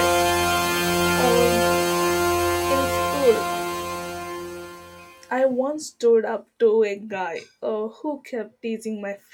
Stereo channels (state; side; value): identical; both; correlation 1.00